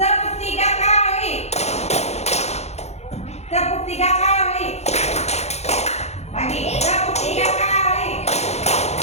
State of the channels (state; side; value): late; right; 0.31 ms